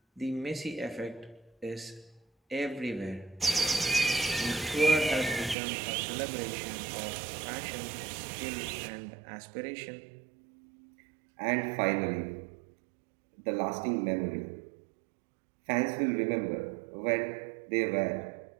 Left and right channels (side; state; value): left; drops out; at 5.6 s